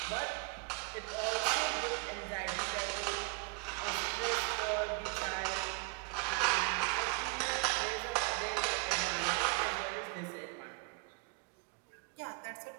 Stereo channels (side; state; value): left; quieter; 29.5 dB